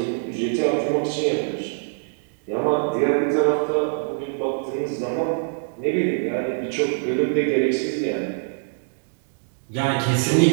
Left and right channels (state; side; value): silent; left; digital silence